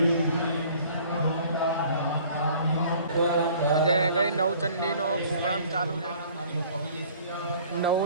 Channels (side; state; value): both; inverted; correlation -0.53